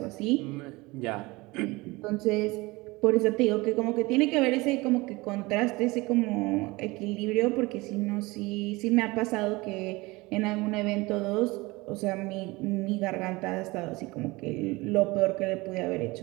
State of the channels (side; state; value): left; quieter; 22.6 dB